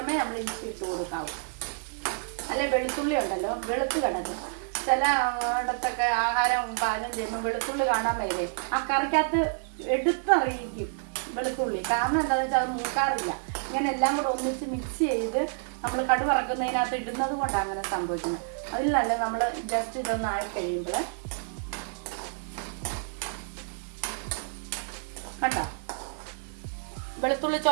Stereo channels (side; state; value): left; silent; digital silence